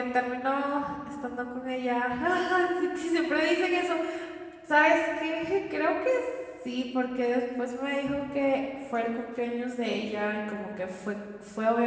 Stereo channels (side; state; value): both; identical; correlation 1.00